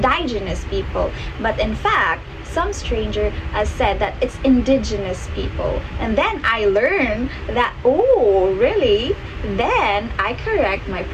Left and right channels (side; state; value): both; identical; correlation 1.00